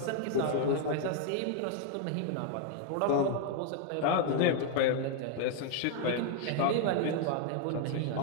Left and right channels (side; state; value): both; different; correlation 0.00